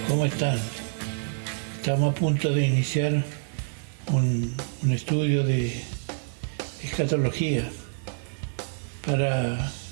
¿cómo están? Estamos a punto de iniciar un estudio de escatología para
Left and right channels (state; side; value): silent; left; digital silence